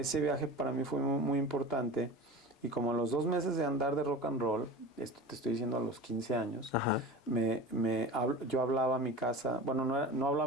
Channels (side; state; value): both; normal; correlation 0.33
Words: viaje para mí fue muy, muy importante. Y como a los 2 meses de andar de rock and roll, esto te estoy diciendo a los 15 años, Ajá. yo hablaba a mi casa, bueno, no hablaba